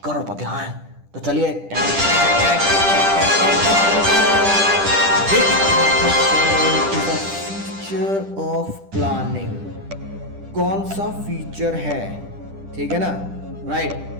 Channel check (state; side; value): late; left; 10 ms